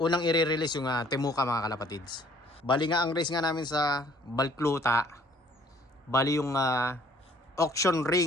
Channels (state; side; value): normal; both; correlation 0.58